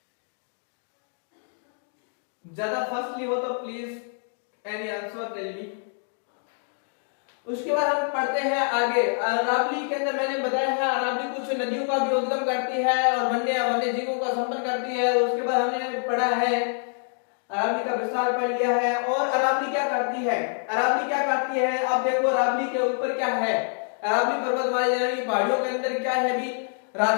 ज्यादा फर्स्टली हो तो please any answer tell me. उसके बाद हम पढ़ते हैं आगे। अरावली के अंदर मैंने बताया है अरावली कुछ नदियों का भी उद्गम करती है और वन्य जीवों का संपन्न करती है। उसके बाद हमने पढ़ा है अरावली का विस्तार पढ़ लिया है। और अरावली क्या करती है, अब देखो अरावली के ऊपर क्या है, अरावली पर्वतमाला यानी पहाड़ियों के अंदर क्या है भी,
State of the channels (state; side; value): silent; right; 61 dB below the other